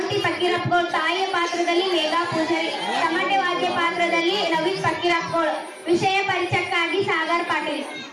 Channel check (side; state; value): both; identical; correlation 1.00